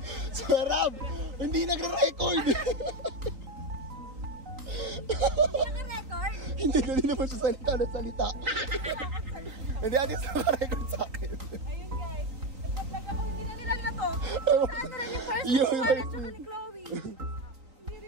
Sarap! Hindi nagre-record. Naka-record? Hindi, dali naman siya salita na salita. Hindi, atin sa naka-record sa akin. Ayun guys, nagpa-vlog ako, hindi na nila na to. Saan na rin yung first Yung one first at saka ni Chloe. Hindi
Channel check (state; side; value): late; left; 3.9 ms